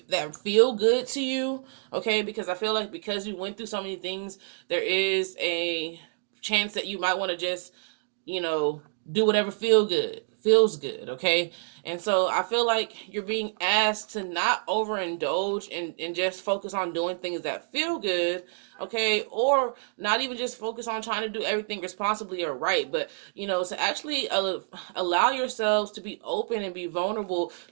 that feel good to you, okay? Because I feel like because you went through so many things, there is a chance that you might want to just, you know, do whatever feels good, okay? And so I feel like you're being asked to not overindulge and just focus on doing things that feel good, okay? Or not even just focus on trying to do everything responsibly or right, but, you know, to actually allow yourselves to be open and be vulnerable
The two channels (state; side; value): silent; left; 60 dB below the other